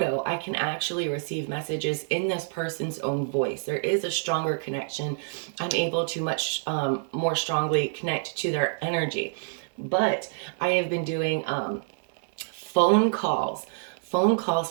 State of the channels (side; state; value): left; silent; 60 dB below the other